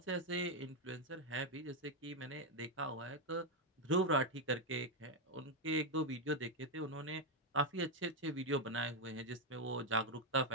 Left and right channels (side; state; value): both; normal; correlation 0.03